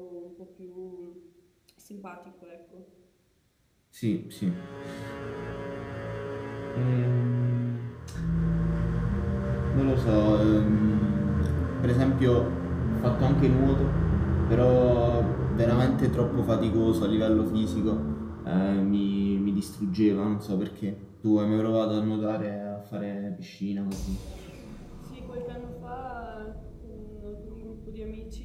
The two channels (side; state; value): both; identical; correlation 1.00